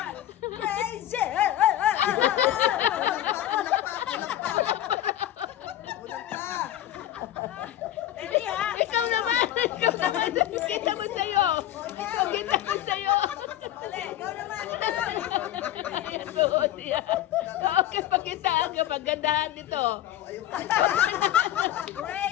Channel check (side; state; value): right; quieter; 12.8 dB